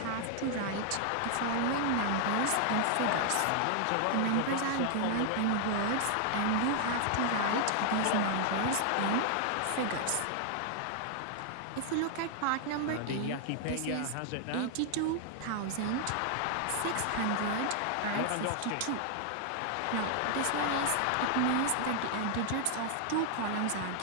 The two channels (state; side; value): different; both; correlation 0.00